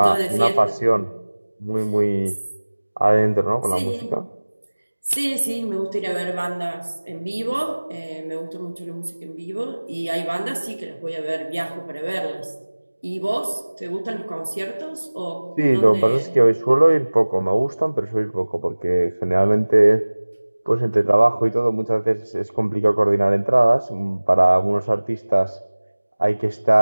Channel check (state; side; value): inverted; both; correlation -1.00